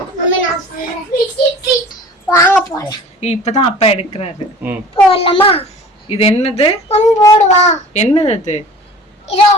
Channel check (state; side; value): normal; both; correlation 0.44